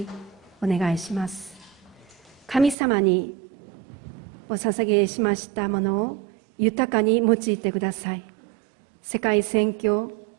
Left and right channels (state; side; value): drops out; left; at 2.8 s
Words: お願いします。神様にお捧げしましたものを豊かに用いてください。世界宣教、